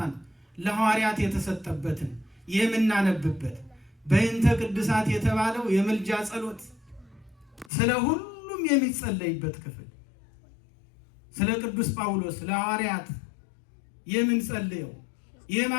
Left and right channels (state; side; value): drops out; right; at 7.7 s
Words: ለሐዋርያት የተሰጠበትን የምናነብበት፣ በእንተ ቅድሳት የተባለው የምልጃ ጸሎት ስለ ሁሉም የሚጸለይበት ክፍል፣ ስለ ቅዱስ ጳውሎስ ለሐዋርያት የምንጸልየው